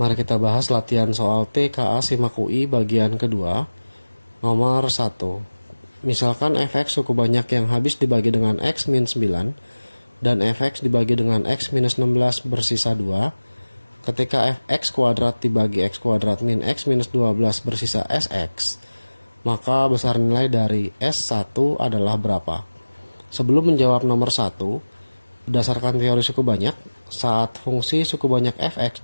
Mari kita bahas latihan soal TKA Simak UI bagian kedua, nomor 1. Misalkan fx suku banyak yang habis dibagi dengan x min 9 dan fx dibagi dengan x minus 16 bersisa 2. Ketika fx kuadrat dibagi x kuadrat min x minus 12 bersisa sx, maka besar nilai dari S1 adalah berapa? Sebelum menjawab nomor 1, berdasarkan teori suku banyak, saat fungsi suku banyak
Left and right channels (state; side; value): inverted; both; correlation -1.00